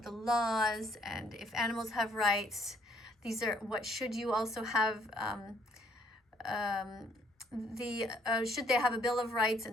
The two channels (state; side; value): normal; both; correlation 0.65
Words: the laws and if animals have rights. These are what should you also have, should they have a Bill of Rights,